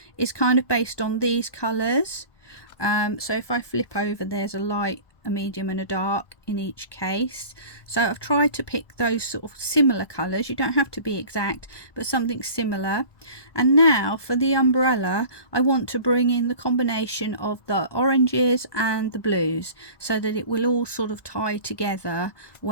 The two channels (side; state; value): right; late; 1.2 ms